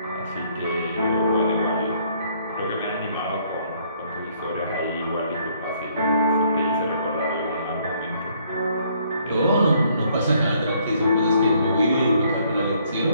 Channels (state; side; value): inverted; both; correlation -0.66